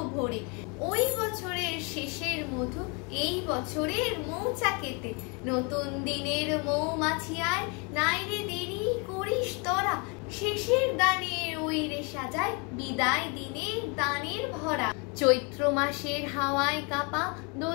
ভরে, ওই বছরের শেষের মধু এই বছরের মৌচাকেতে। নতুন দিনের মৌমাছি আয়, নাইরে দেরি করিস তোরা, শেষের দানের ওই রে সাজায় বিদায় দিনের দানের ভরা। চৈত্র মাসের হাওয়ায় কাপা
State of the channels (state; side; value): quieter; right; 32.3 dB